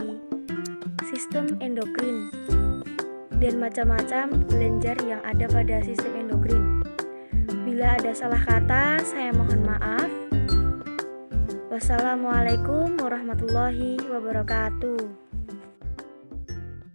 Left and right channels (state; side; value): inverted; both; correlation -1.00